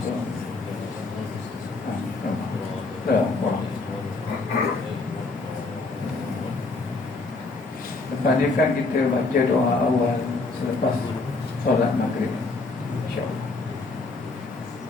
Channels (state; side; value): quieter; right; 3.6 dB